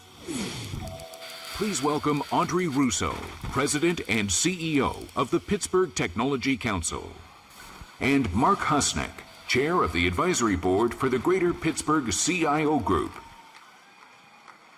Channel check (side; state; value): both; identical; correlation 1.00